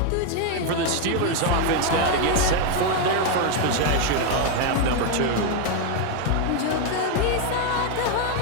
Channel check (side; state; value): both; different; correlation 0.01